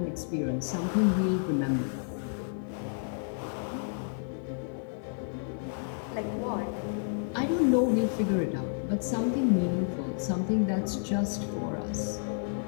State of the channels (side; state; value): right; silent; digital silence